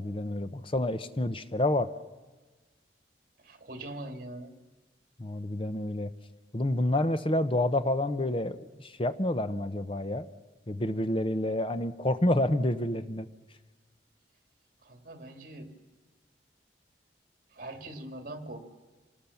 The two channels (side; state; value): both; normal; correlation 0.62